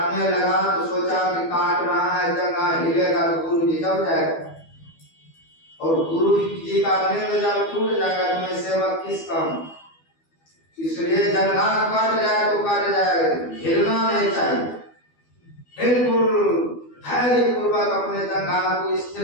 लगा। तो सोचा कि काट रहा है, जंघा हिलेगा तो गुरु जी जब जाएगा, और गुरु जी का नींद जब टूट जाएगा तो मैं सेवक किस काम। इसलिए जंघा कट जाए तो कट जाए, हिलना नहीं चाहिए। बिल्कुल धैर्य पूर्वक अपने जंघा को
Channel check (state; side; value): late; right; 12 ms